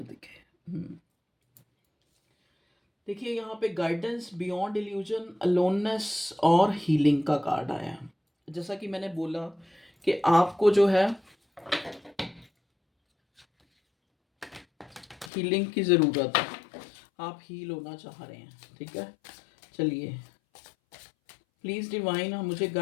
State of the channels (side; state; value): right; drops out; at 15.3 s